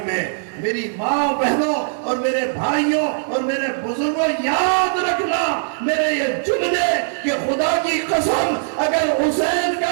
میں میری ماں بہنوں اور میرے بھائیوں اور میرے بزرگوں، یاد رکھنا میرے یہ جملے کہ خدا کی قسم اگر حسین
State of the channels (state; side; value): silent; left; digital silence